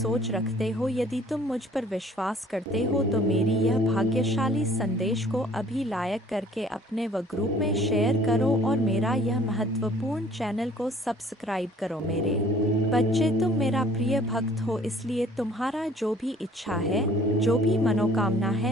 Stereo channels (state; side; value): normal; both; correlation 0.55